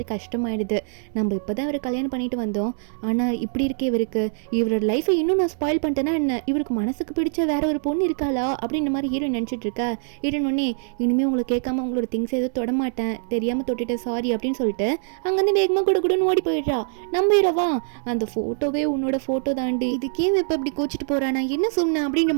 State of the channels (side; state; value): left; silent; digital silence